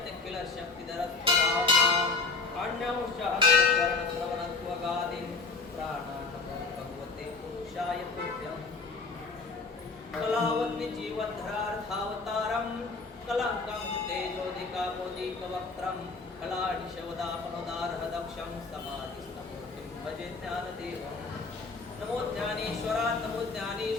किल शक्तिधरस्वधाम् अन्यौषधकरणश्रवणत्वगादिं प्राणानमो भगवते पुरुषाय तुभ्यम् कलावन्यजीवधरार्थावतारं कलङ्कं तेजोदिकामोदिकवक्त्रं कलानिशवदापनोदारहदक्षं समाधिस्तमूर्तिं भजे ज्ञानदेवम् नमो ज्ञानेश्वरा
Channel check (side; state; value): right; quieter; 4.1 dB